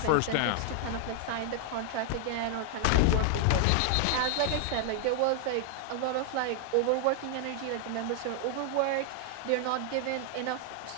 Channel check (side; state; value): both; different; correlation 0.00